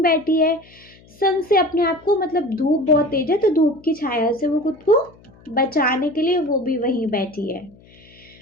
बैठी है, सन से अपने आप को, मतलब धूप बहुत तेज है तो धूप की छाया से वो खुद को बचाने के लिए वो भी वहीं बैठी है।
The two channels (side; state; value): left; noise; hum, 26 dB below the sound